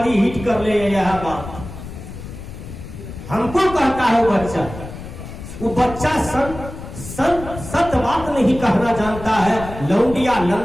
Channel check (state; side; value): noise; left; rumble, 12 dB below the sound